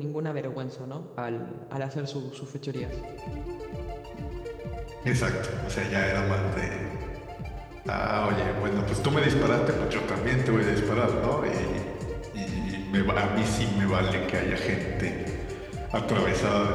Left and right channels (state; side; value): identical; both; correlation 1.00